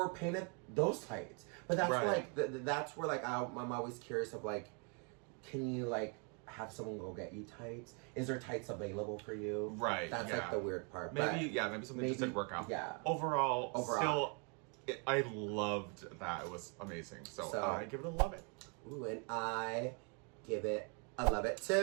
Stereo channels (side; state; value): left; quieter; 36.7 dB